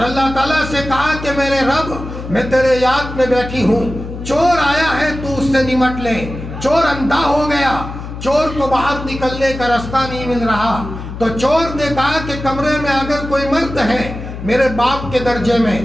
اللہ تعالیٰ سے کہا کہ میرے رب میں تیرے یاد میں بیٹھی ہوں، چور آیا ہے تو اس سے نمٹ لے۔ چور اندھا ہو گیا، چور کو باہر نکلنے کا راستہ نہیں مل رہا، تو چور نے کہا کہ کمرے میں اگر کوئی مرد ہے میرے باپ کے درجے میں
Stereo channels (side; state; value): left; noise; hum, 9 dB below the sound